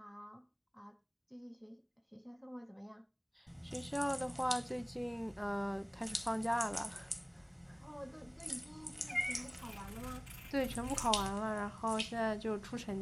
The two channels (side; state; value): both; identical; correlation 1.00